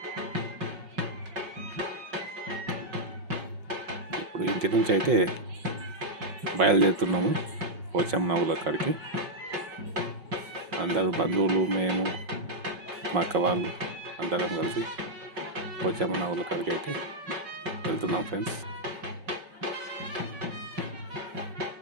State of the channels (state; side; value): late; left; 5.3 ms